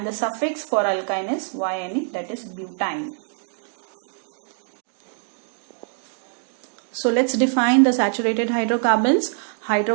the suffix for alkyne is YNE, that is butyne. So let's define the saturated hydrocarbons.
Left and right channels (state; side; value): silent; left; 63 dB below the other